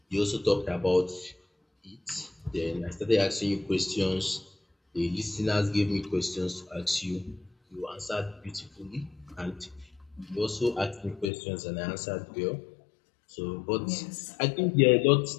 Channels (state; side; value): drops out; right; at 11.3 s